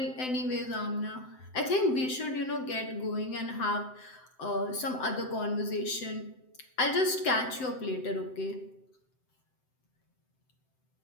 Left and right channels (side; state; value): right; late; 7.8 ms